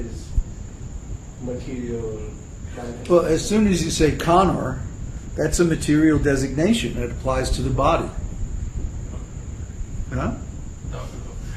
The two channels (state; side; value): identical; both; correlation 1.00